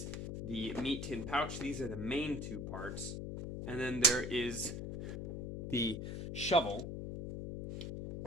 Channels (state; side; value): noise; left; hum, 4 dB below the sound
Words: the meat tin pouch. These are the main two parts. And then there is the shovel.